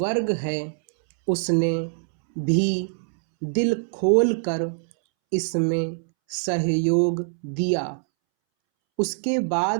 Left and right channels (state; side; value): silent; left; 63 dB below the other